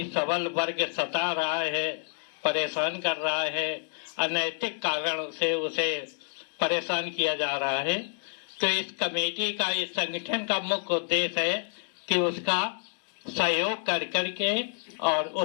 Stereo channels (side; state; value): right; silent; digital silence